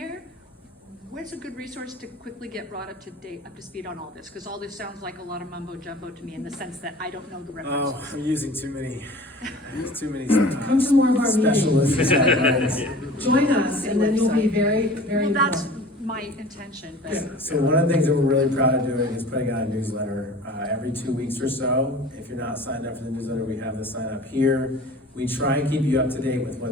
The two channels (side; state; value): both; normal; correlation 0.42